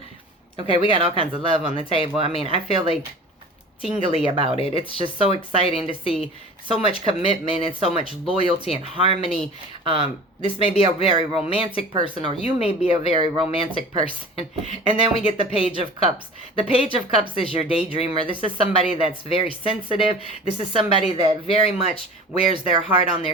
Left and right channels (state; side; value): normal; both; correlation 0.40